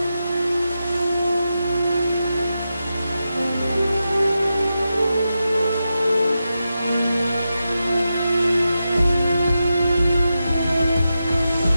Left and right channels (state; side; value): inverted; both; correlation -0.89